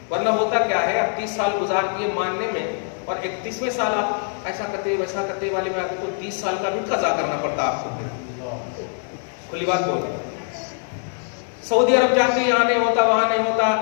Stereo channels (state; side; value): silent; right; 57 dB below the other